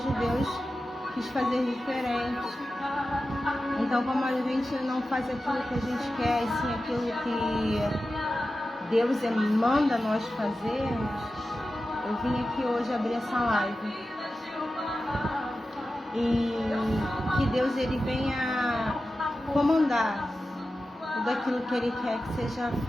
Deus quis fazer diferente. Então, como a gente não faz aquilo que a gente quer, e sim aquilo que Deus manda nós fazermos, eu vim aqui hoje abrir essa live. E que Deus ele venha comandar tudo aquilo que Ele quer que seja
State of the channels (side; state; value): both; normal; correlation 0.93